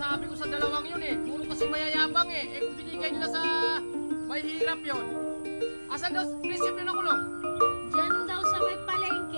ko sa dalawang yun eh. Puro kasi mayayabang eh. Eh kung binigay nila sa may hirap yun. Asan daw prinsipyo nakulong? Diyan daw sa may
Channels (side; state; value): both; inverted; correlation -1.00